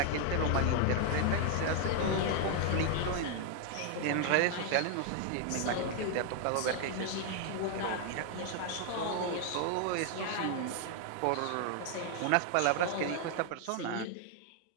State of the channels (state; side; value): different; both; correlation 0.00